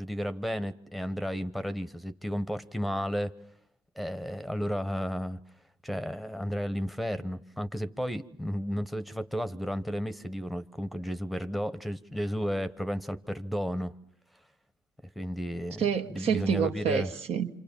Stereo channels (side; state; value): both; normal; correlation 0.84